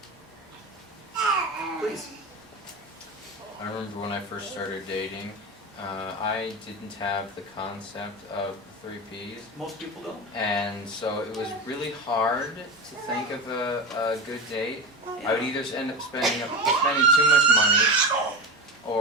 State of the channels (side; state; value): both; normal; correlation 0.23